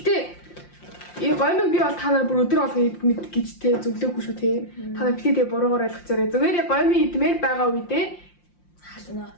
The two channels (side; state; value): right; late; 5.7 ms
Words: энэ гомиг би бол та нар бүр өдөр болгон мэд гэж тий зөвлөөгүй шүү тий. Та нар битээ тэгээ буруугаар ойлгож байгаа. Зүгээр яг гомиг идмээр байгаа үедээ халуун